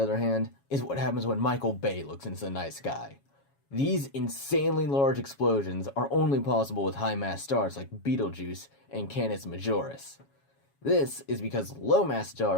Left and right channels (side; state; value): right; late; 7.2 ms